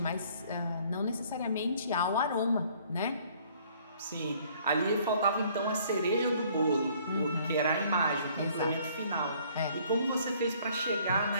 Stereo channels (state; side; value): inverted; both; correlation -0.59